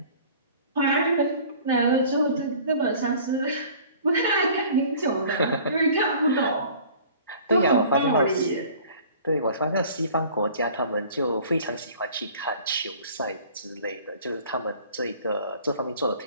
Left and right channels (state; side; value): inverted; both; correlation -0.48